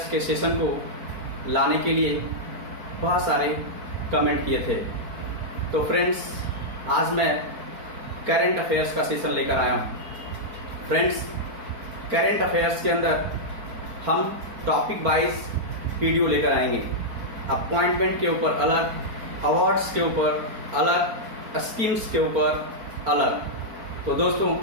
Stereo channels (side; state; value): left; late; 4.4 ms